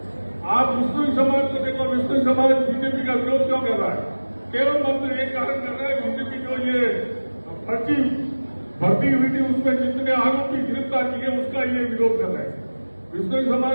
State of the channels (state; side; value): inverted; both; correlation -1.00